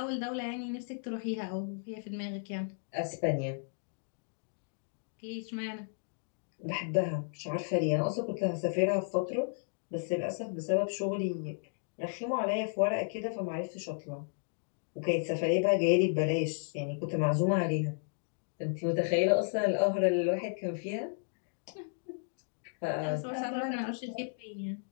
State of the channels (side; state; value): right; silent; digital silence